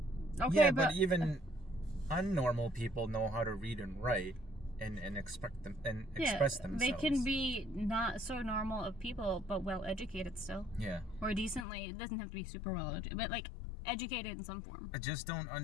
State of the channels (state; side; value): drops out; right; at 11.7 s